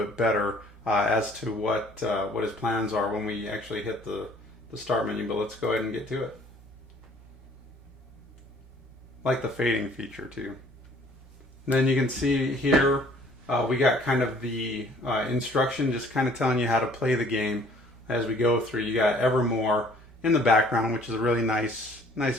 better as to what his plans are when we actually hit the start menu. But let's go ahead and get to it. Like the fading feature too. And then you can see here we got kind of the instruction, just kind of telling you how to play the game as we go through. You got Evermore in the background, which is a really nice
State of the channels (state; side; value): normal; both; correlation 0.57